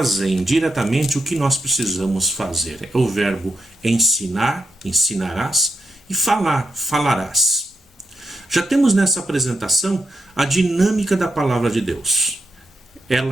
diretamente o que nós precisamos fazer. É o verbo ensinar, ensinarás, e falar, falarás. Já temos nessa apresentação a dinâmica da palavra de Deus.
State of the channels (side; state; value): both; normal; correlation 0.84